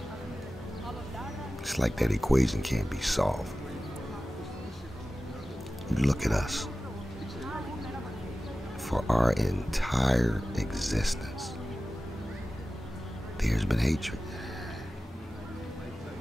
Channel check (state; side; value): normal; both; correlation 0.95